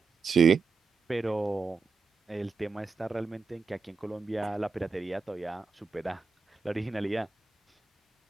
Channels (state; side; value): quieter; left; 4.5 dB